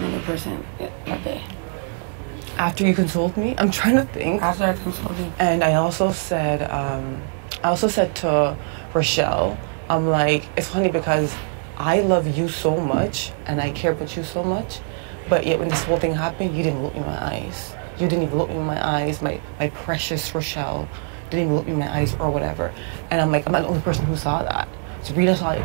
person that day? After you consoled me? I'm trying to think. After I consoled you. And I also said to Rochelle, I'm like, it's funny because I love you so much, and I care about you so much, but yet when this whole thing happened, you didn't look me in my eyes. You didn't even look me in my eyes, my precious Rochelle. Didn't even look me in my eyes or whatever. And I'm like, I'm not the only person who saw that. Sabrina saw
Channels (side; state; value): left; silent; 56 dB below the other